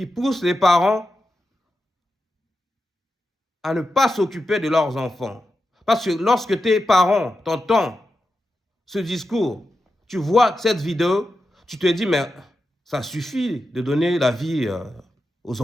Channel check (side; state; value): both; normal; correlation 0.90